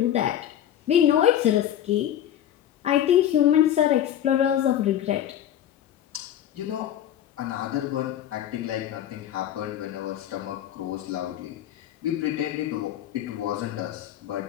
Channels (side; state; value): right; quieter; 10.9 dB